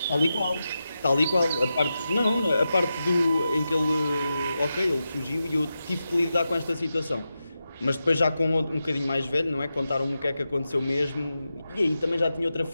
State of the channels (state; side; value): inverted; both; correlation -0.90